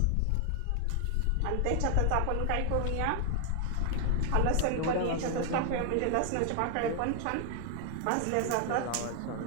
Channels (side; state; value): both; different; correlation 0.00